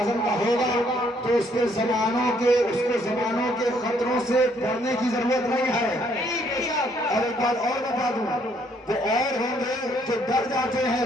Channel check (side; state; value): both; normal; correlation 0.67